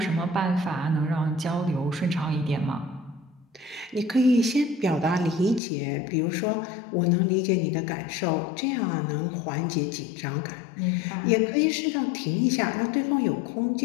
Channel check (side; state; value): right; drops out; at 5.6 s